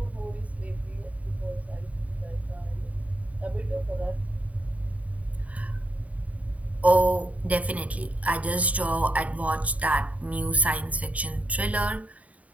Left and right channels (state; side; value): late; left; 0.069 ms